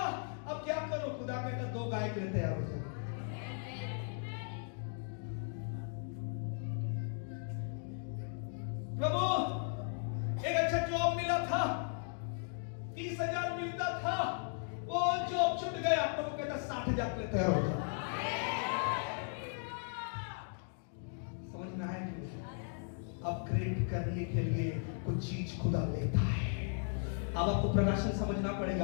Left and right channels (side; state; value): right; silent; 53 dB below the other